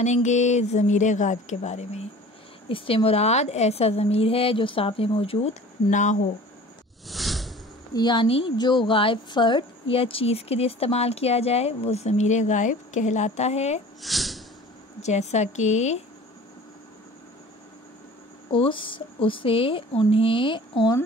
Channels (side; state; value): both; normal; correlation 0.44